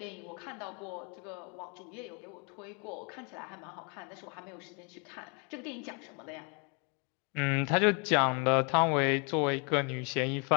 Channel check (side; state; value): right; quieter; 34.8 dB